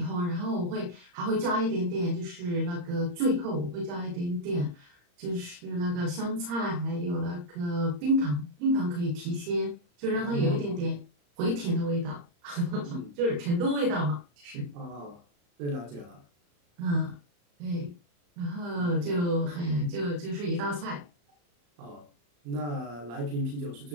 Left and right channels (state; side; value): late; left; 34 ms